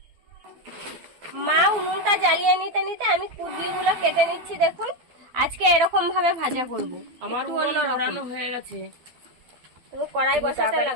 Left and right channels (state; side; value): late; left; 12 ms